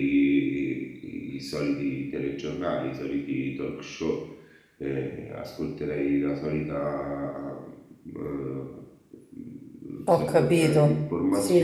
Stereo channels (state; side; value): identical; both; correlation 1.00